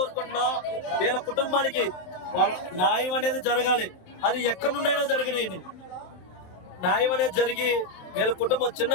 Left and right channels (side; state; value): right; late; 27 ms